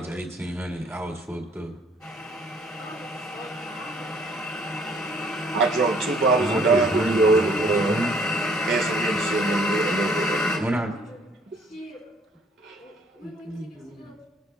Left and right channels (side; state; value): both; normal; correlation 0.60